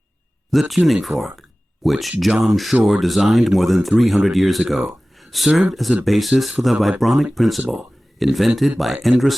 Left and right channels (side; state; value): both; normal; correlation 0.97